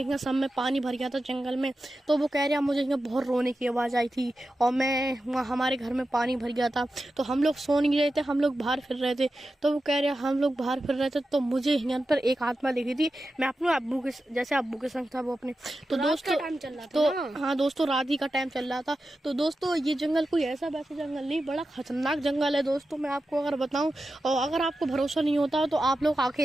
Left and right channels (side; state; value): both; normal; correlation 0.92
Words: सब में पानी भर गया था जंगल में। तो वो कह रहा मुझे यहाँ बहुत रोने की आवाज़ आई थी और मैं वहाँ हमारे घर में पानी भर गया था। तो हम लोग सो नहीं रहे थे, हम लोग बाहर फिर रहे थे। तो वो कह रहे हम लोग बाहर फिर रहे थे, तो मुझे यहाँ पर एक आत्मा दिखी थी। मैं अपने अब्बू के संग था वो अपने। तो दोस्तों टाइम चल रहा था तो हाँ दोस्तों रात ही का टाइम चल रहा था। तो दोस्तों ये जंगल कोई ऐसा वैसा जंगल नहीं, बड़ा खतरनाक जंगल है दोस्तों, मैं आपको अगर बताऊं। और अगर आपको भरोसा नहीं होता तो आप लोग